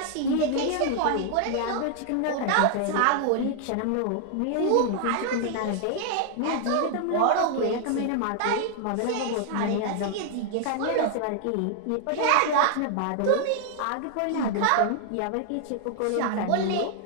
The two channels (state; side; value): different; both; correlation 0.00